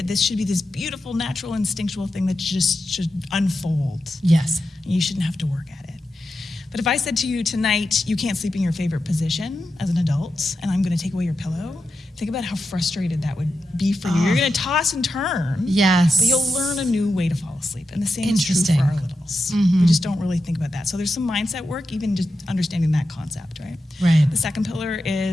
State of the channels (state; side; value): normal; both; correlation 0.89